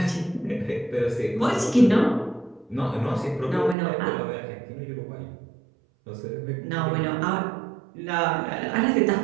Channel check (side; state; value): left; drops out; at 3.8 s